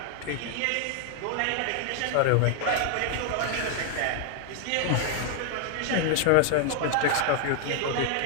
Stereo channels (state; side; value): different; both; correlation 0.00